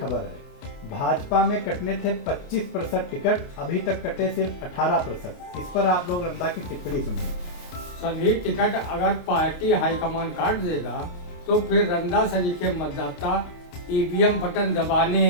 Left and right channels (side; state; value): right; late; 28 ms